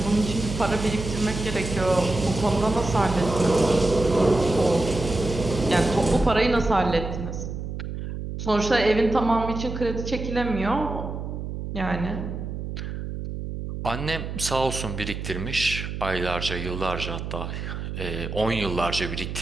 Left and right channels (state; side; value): noise; right; hum, 6 dB below the sound